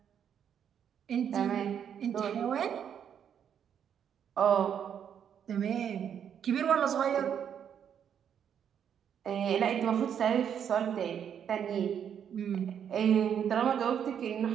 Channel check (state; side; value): quieter; left; 8.5 dB